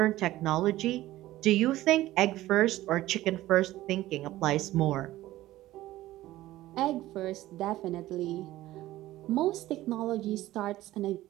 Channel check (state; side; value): quieter; left; 15.9 dB